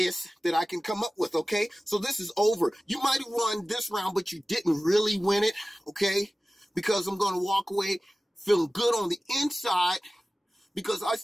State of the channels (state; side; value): normal; both; correlation 0.97